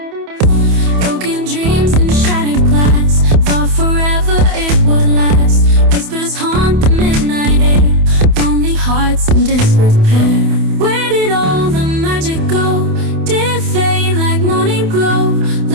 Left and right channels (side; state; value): left; late; 28 ms